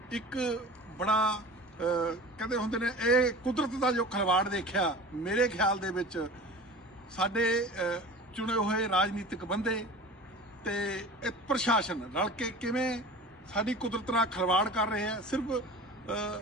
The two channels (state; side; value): normal; both; correlation 0.37